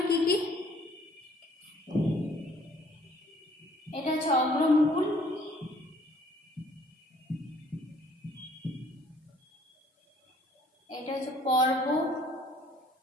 কি কি, এটা হচ্ছে অগ্রমুকুল, এটা হচ্ছে পর্ব,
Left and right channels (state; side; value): normal; both; correlation 0.59